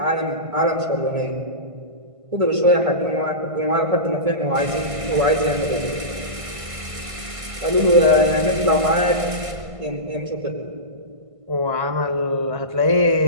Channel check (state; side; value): late; left; 1.5 ms